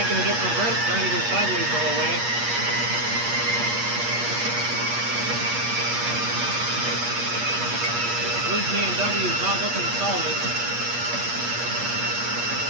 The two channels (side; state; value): left; late; 8.5 ms